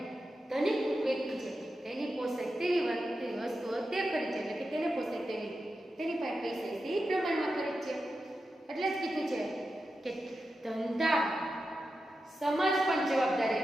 ધનિક વ્યક્તિ છે તેની પોષાય તેવી વસ્તુઓ તે ખરીદ છે, એટલે કે તેને પોષાય તેવી, તેની પાસે પૈસા છે એ પ્રમાણમાં ખરીદ છે. એટલે જ કીધું છે કે ધંધા સમાજ પણ જવાબદારી,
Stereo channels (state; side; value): normal; both; correlation 0.90